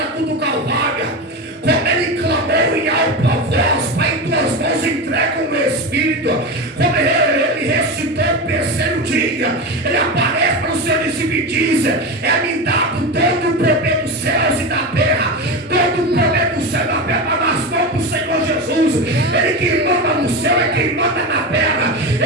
cruz do Calvário. Como Ele clamou em alta voz: Pai, em tuas mãos entrega o meu espírito. Como ele ressuscitou o terceiro dia, Ele aparece para o seu discípulo e diz: é-me dado todo o poder dos céus e da terra. Todo o poder do céu e da terra nas mãos do Senhor Jesus. Ele que manda no céu é quem manda na terra.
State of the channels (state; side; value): normal; both; correlation 0.20